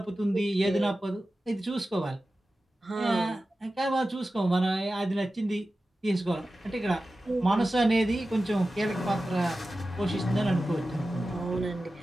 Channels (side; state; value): both; normal; correlation 0.94